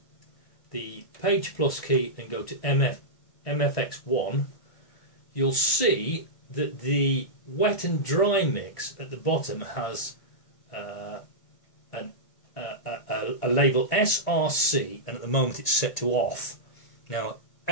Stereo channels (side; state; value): right; late; 1.6 ms